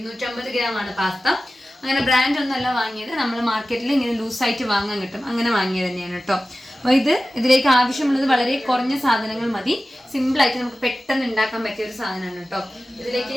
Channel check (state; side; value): normal; both; correlation 0.95